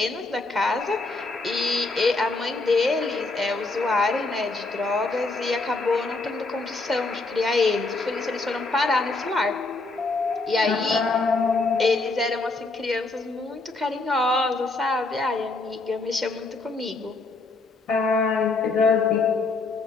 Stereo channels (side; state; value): right; quieter; 3.5 dB